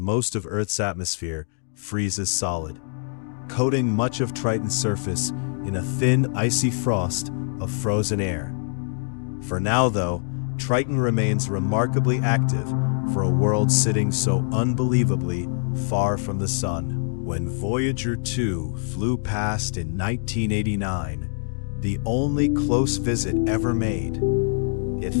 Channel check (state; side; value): silent; right; digital silence